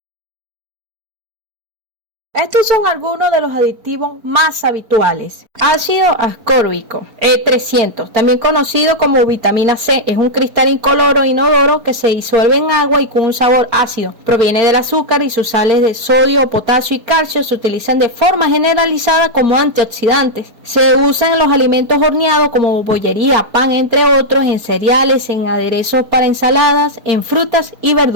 Estos son algunos de los aditivos más habituales. Ácido ascórbico, E300, también conocido como vitamina C, es un cristal incoloro inodoro que se disuelve en agua y con un sabor ácido. Proviene del azúcar y sus sales de sodio, potasio y calcio se utilizan de forma generalizada como antioxidantes. Se usan en los alimentos horneados como bollería, pan, entre otros, en cereales, en aderezos para ensaladas, en frutas y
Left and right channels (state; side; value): late; left; 4.4 ms